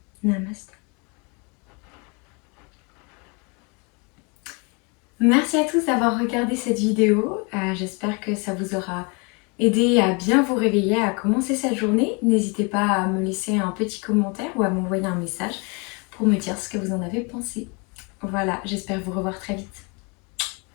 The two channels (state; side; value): quieter; right; 31.6 dB